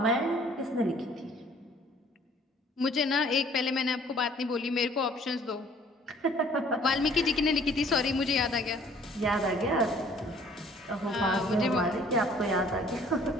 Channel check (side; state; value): both; normal; correlation 0.56